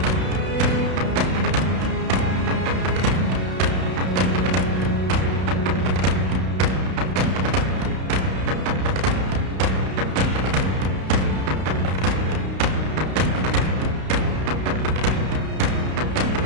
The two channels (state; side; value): late; left; 32 ms